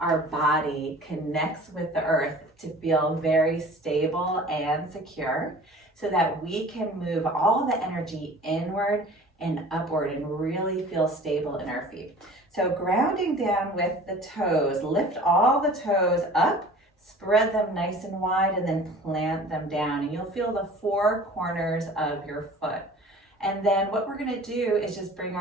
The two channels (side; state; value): both; normal; correlation 0.44